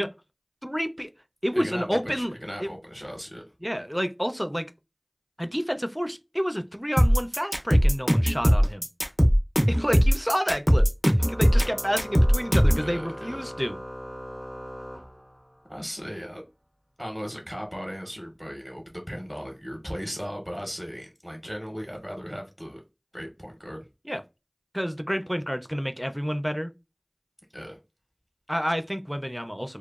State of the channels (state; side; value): identical; both; correlation 1.00